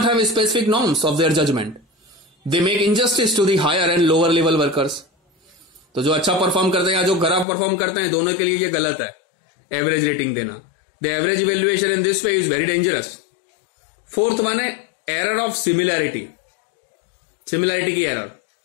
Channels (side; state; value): right; drops out; at 7.5 s